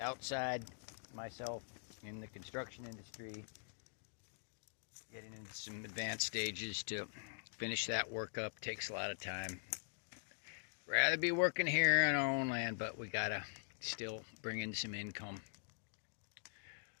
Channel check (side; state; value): right; silent; digital silence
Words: myself in the construction industry, getting into some advanced stages to finish that work up. Takes a lot of time. Rather be working here on our own land, but we gotta still bring in some income.